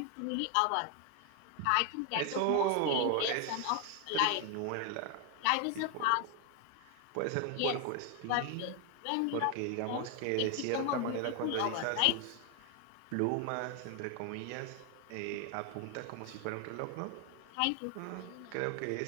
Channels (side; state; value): both; different; correlation 0.01